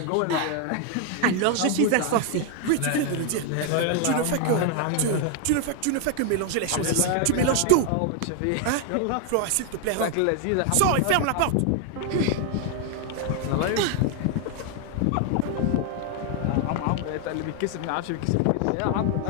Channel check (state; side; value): different; both; correlation 0.00